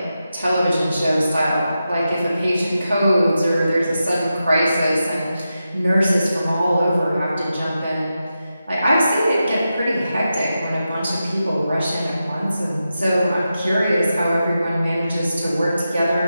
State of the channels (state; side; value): inverted; both; correlation -0.89